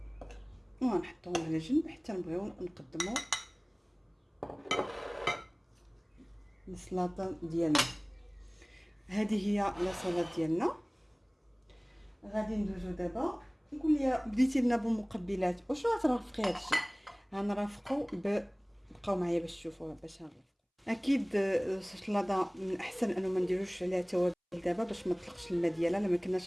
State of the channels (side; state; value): both; identical; correlation 1.00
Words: ونحطوهم على جنب حتى نبغيو نقدمو السلطه ديالنا. هذه هي لاصالات ديالنا. غادي ندوزو دابا. نقول لي بديتي لنا بالمقبلات، واش غترافقي هادشي؟ غنرافقو بقاو معايا باش تشوفوها باش نرافقو. اكيد السلطه من احسن انه ما نديروش عليها توابل دابا باش ما تطلقش الماء ديالها. لما